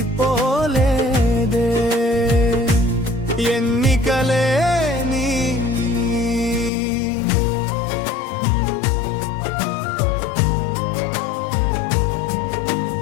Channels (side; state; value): right; drops out; at 6.7 s